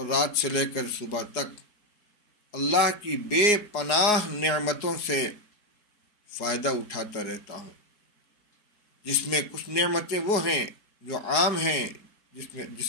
رات سے لے کر صبح تک اللہ کی بے پناہ نعمتوں سے فائدہ اٹھاتا رہتا ہوں، جس میں کچھ نعمتیں وہ ہیں جو عام ہیں، جس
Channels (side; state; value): right; late; 4.8 ms